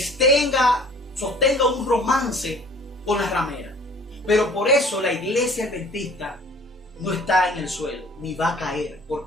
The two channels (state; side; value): normal; both; correlation 0.50